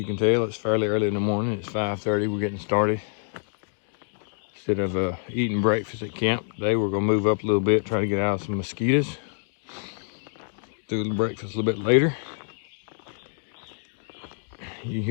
can tell, it's fairly early in the morning. It's 5:30. We're getting started. Instead of eating breakfast at camp today, we're going to move up a little bit, try to get out of some mosquitoes. Do the breakfast a little bit later. You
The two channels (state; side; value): silent; right; digital silence